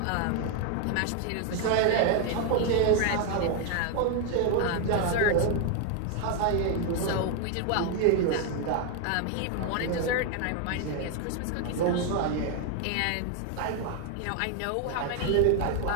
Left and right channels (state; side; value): different; both; correlation 0.01